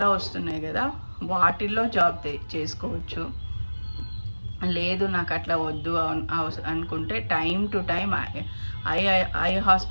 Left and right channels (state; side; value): inverted; both; correlation -1.00